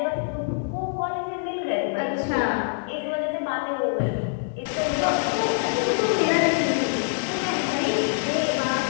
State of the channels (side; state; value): right; silent; 62 dB below the other